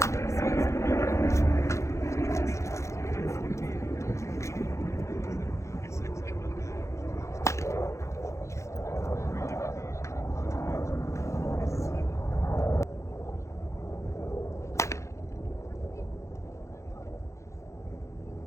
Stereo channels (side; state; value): right; late; 0.14 ms